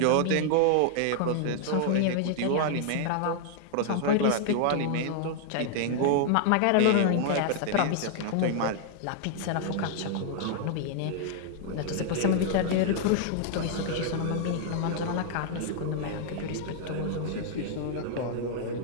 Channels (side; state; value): both; different; correlation -0.01